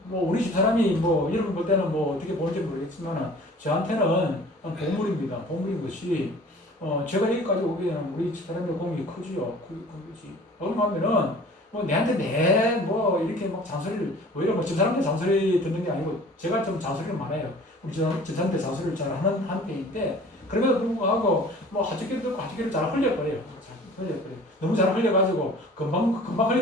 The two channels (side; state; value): both; normal; correlation 0.47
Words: 우리 집 사람이 뭐 여러분 볼 때는 뭐 어떻게 보는지 모르겠지만 저한테는 보물입니다. 보물인 것이 제가 여기까지 오기에는 우리 집 사람의 공이 크지요. 그지. 얼마면은 뭐 내한테 뭐 이렇게 막 잔소리를 오히려 뭐 집사람한테 잔소리 듣는 게 아니고 제가 좀 잔소리를 많아요. 우리 집사람한테 잔소리를 잘 하는 편인데 그럼에도 불구하고 뭐 하주기를 잘 흘려버려요. 잘 흘려버려요. 너무 잘 흘려가지고 금방